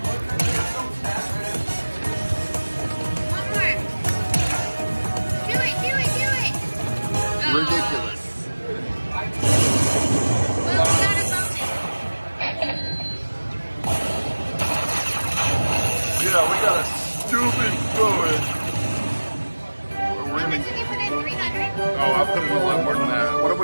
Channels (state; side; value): inverted; both; correlation -1.00